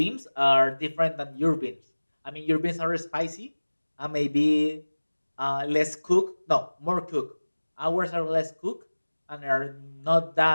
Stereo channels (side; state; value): both; inverted; correlation -1.00